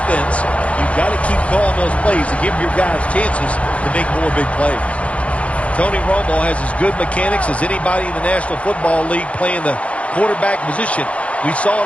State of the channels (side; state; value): right; late; 0.063 ms